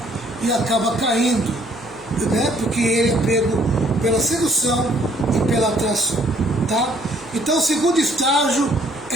e acaba caindo, né? Porque ele é pego pela sedução e pela atração, tá? Então o segundo estágio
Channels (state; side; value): noise; left; hum, 27 dB below the sound